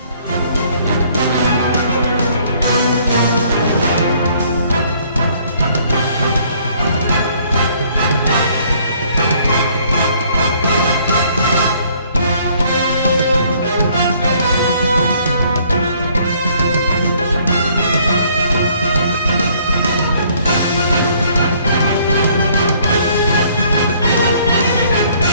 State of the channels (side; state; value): both; inverted; correlation -0.62